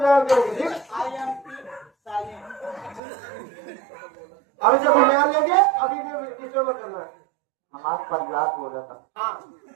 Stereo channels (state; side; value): drops out; left; at 3.0 s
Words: करेंगे ठीक। अभी जब हम बयान लेंगे अभी डिस्टर्ब मत करना। हमारे परिवार बोल रहा था। हाँ